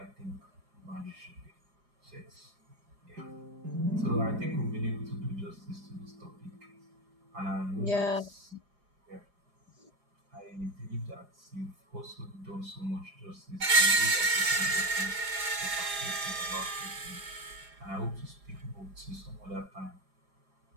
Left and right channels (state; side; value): late; left; 4.9 ms